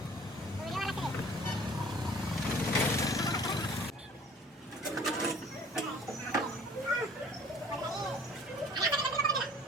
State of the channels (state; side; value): normal; both; correlation 0.50